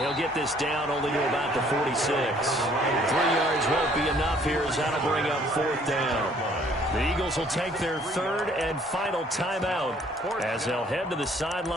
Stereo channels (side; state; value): both; normal; correlation 0.60